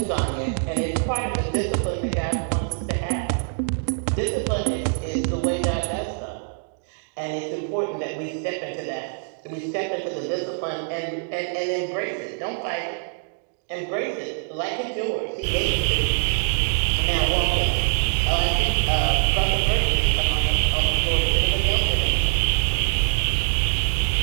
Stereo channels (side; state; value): left; silent; digital silence